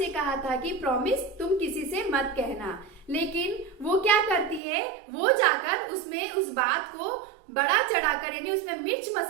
कहा था कि प्रॉमिस तुम किसी से मत कहना। लेकिन वो क्या करती है, वो जाकर उसमें उस बात को बड़ा चढ़ाकर यानी उसमें मिर्च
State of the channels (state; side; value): drops out; left; at 4.6 s